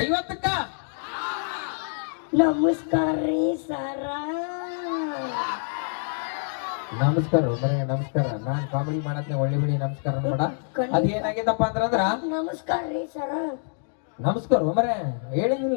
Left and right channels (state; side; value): silent; right; digital silence